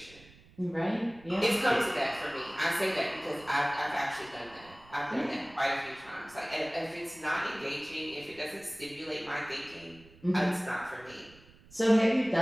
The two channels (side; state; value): right; noise; rumble, 24 dB below the sound